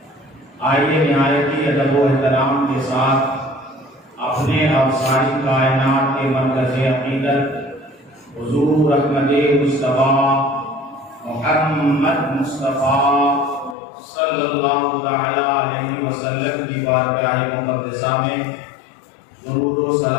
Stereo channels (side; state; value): right; drops out; at 13.8 s